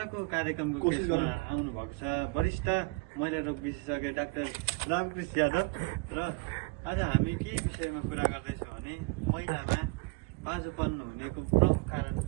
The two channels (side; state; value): left; quieter; 25.8 dB